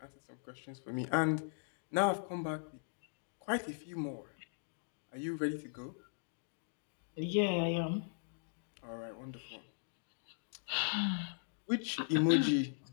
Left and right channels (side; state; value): right; silent; digital silence